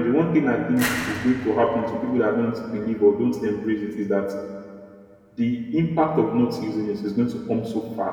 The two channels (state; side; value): identical; both; correlation 1.00